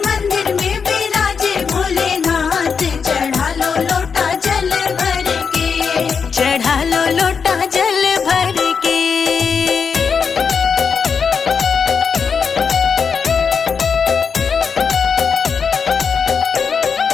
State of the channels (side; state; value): right; quieter; 6.0 dB